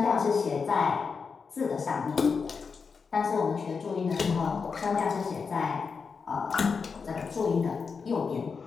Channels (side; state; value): right; quieter; 5.3 dB